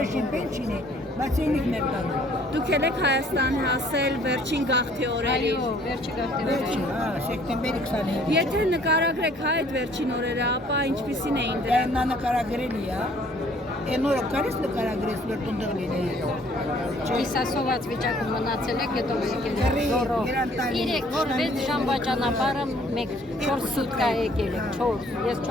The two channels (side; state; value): both; normal; correlation 0.59